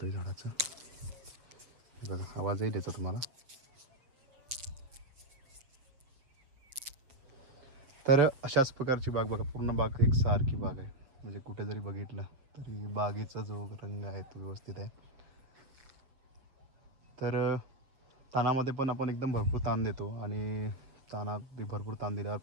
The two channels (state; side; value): late; left; 7.2 ms